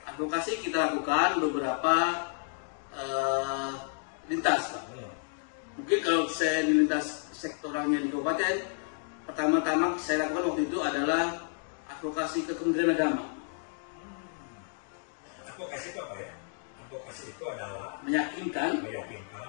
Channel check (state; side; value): silent; right; 57 dB below the other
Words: Advokasi kita lakukan beberapa lintas Pak. Mungkin kalau saya di lintas sektoralnya di kabupaten, pertama-tama saya lakukan waktu itu adalah advokasi ke Kementerian Agama. Advokasi itu apa ya? Advokasi itu adalah meyakinkan,